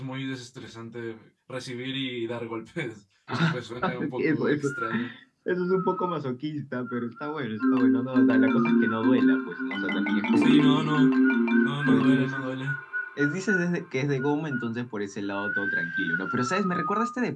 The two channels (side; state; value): both; identical; correlation 1.00